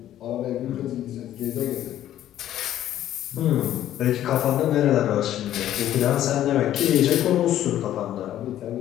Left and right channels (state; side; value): quieter; right; 12.2 dB